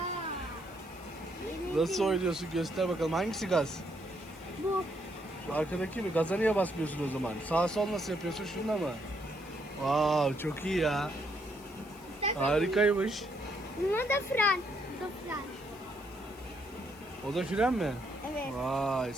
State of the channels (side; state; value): left; noise; hiss, 23 dB below the sound